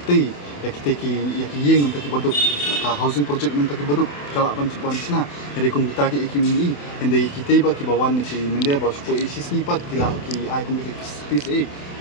ti ya kita yeng nam taki boduk ka housing project nam taki boduk kala ban sina jadi kum kita ki ikimi hende kita ba ki bawan ni ki mende ba supo isis ni pat kila ki ai kum ki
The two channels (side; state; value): right; late; 28 ms